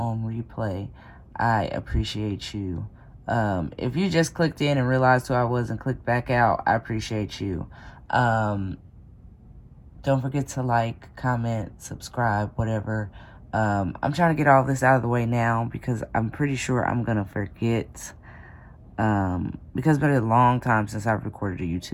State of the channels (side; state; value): both; identical; correlation 1.00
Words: replay, I appreciate you. If you just clicked in and realized who I was and clicked back out, I appreciate you. Don't forget to like, comment, subscribe, whatever. I'm trying to get all this out of the way now because I'm pretty sure I'm going to forget. Because it's been a long time since I've recorded a